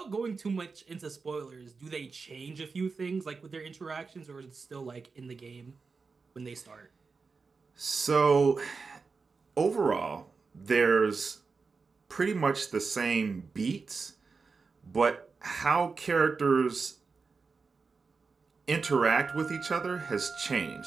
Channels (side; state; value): left; quieter; 4.7 dB